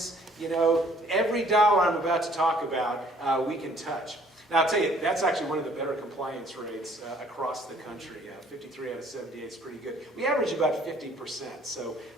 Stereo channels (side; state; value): both; normal; correlation 0.59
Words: You know, every dollar I'm about to talk about, we can touch. Now, I'll tell you, that's actually one of the better compliance rates across the country. 53 out of 78 is pretty good. We average about 50%, so